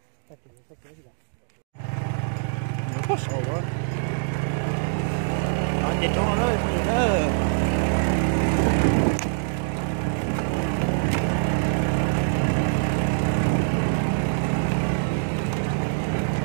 nó có sầu quá nó chết cho nó thôi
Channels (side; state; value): left; silent; digital silence